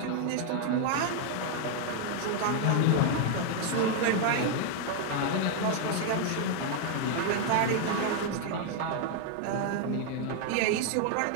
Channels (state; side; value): different; both; correlation 0.00